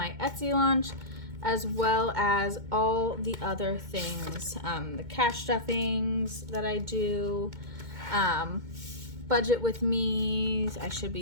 Etsy launch, as well as all the other things, the cash stuffings that I do, budget with me. I should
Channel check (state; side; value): late; left; 2.2 ms